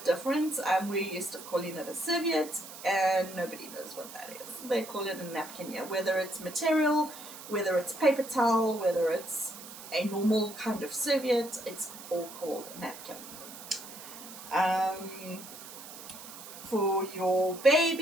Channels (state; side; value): noise; right; hiss, 14 dB below the sound